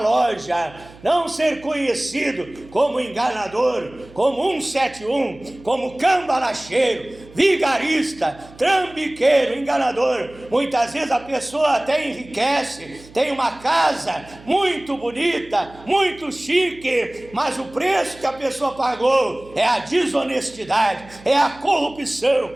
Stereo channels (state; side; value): noise; right; hum, 22 dB below the sound